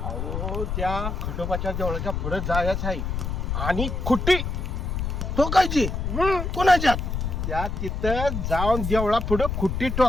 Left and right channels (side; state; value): left; noise; rumble, 3 dB below the sound